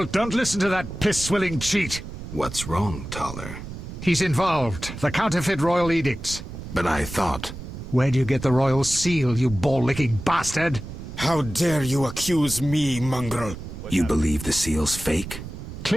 don't listen to that piss-swilling cheat! What's wrong, Taller? He's involved. The counterfeit royal edicts. But I thought... Where do you get the royal seal, you ball-licking bastard? How dare you accuse me, mongrel? You believe the seal's fake?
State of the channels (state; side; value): noise; right; rumble, 10 dB below the sound